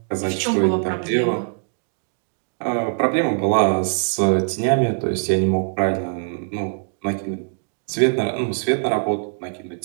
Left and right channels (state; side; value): silent; left; digital silence